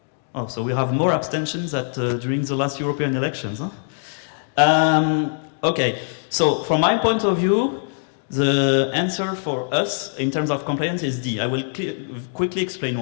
Oh, so we have more abstentions during the last European elections. Huh? Okay, so from my point of view, the answer for us in terms of compliance is D. I will quickly explain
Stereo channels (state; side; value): silent; right; digital silence